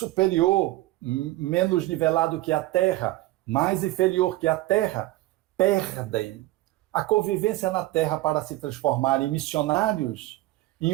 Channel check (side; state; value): left; quieter; 17.7 dB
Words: menos nivelado que a Terra, mais inferior que a Terra, perdem a convivência na Terra para se transformar em missionários,